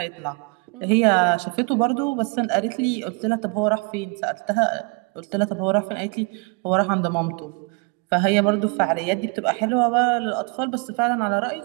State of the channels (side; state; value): left; quieter; 31.5 dB